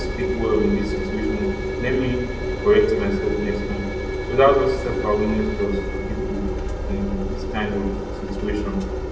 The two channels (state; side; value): identical; both; correlation 1.00